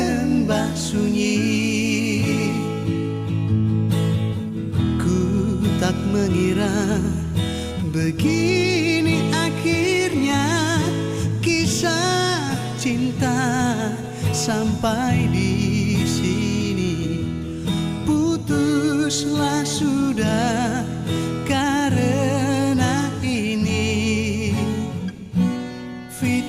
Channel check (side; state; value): both; identical; correlation 1.00